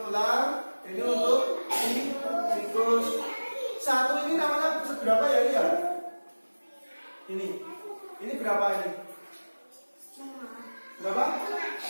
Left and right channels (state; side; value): inverted; both; correlation -1.00